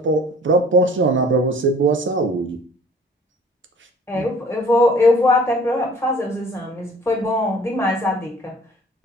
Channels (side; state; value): both; normal; correlation 0.51